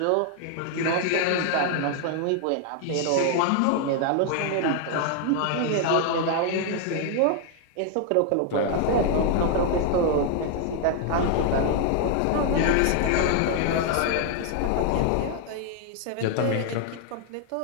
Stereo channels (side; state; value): both; different; correlation 0.00